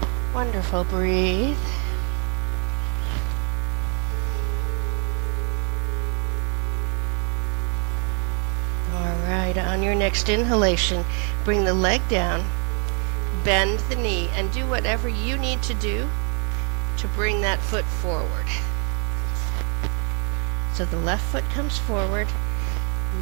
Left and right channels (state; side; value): quieter; left; 38.7 dB